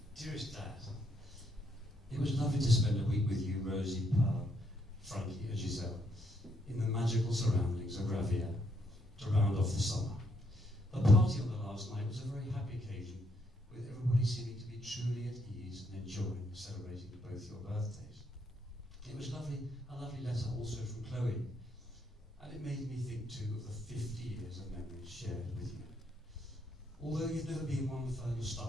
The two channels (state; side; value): normal; both; correlation 0.74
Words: Dearest Dad, it was lovely to spend a week with you, Rosie, Pearl, Frankie and Giselle, in the magical surroundings of Ravier to round off the summer. The party on the last night was a very happy occasion, with everybody seeming to be truly at ease and enjoying celebrating both your birthdays. It was a lovely letter also from Chloe, and it made me think too of the 50 years of memories shared with you. Although you've never been one for